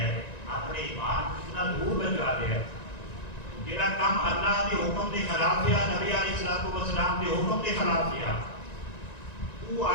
اپنے ایمان اتنا دور بچا لیا ہے، جڑا کام اللہ کے حکم کے خلاف کیا، نبی علیہ السلام کے حکم کے خلاف کیا، وہ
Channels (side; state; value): right; late; 1.9 ms